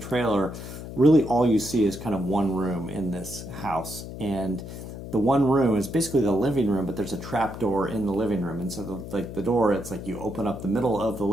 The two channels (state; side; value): noise; left; hum, 10 dB below the sound